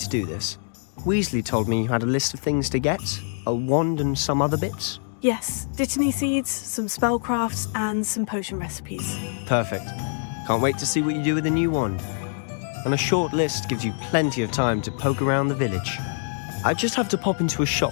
do this? Weasley told me you had a list of things to get, a wand and some other bits. Yes, Dittany seeds, some spellcrafts, and some potion recipes. Perfect. Can't wait to see what you do with the new wand. And a short list gives you plenty of time to poke around the village. I just have to pop into a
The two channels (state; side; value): silent; right; digital silence